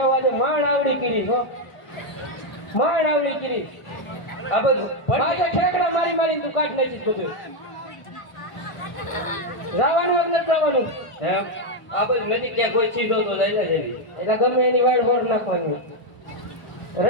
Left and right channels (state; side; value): late; right; 1.0 ms